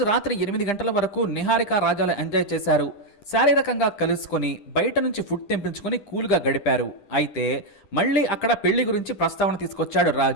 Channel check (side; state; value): right; late; 10 ms